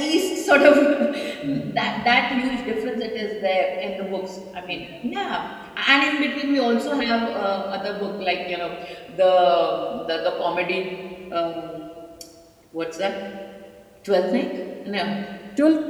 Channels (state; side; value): identical; both; correlation 1.00